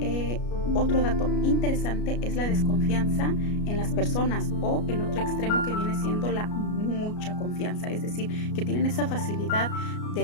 Otro dato interesante es la desconfianza en las personas, o el otro extremo que viene siendo la mucha confianza, es decir, que tienen esa facilidad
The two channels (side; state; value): right; late; 33 ms